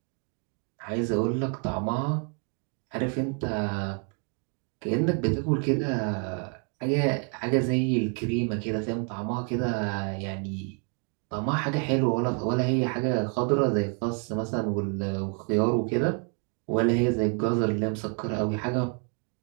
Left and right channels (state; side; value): quieter; left; 38.3 dB